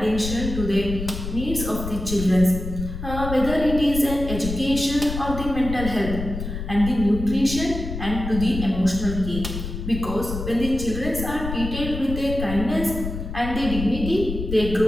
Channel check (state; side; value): noise; left; rumble, 6 dB below the sound